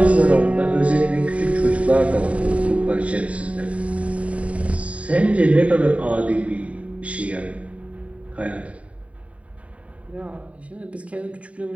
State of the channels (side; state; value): left; late; 0.066 ms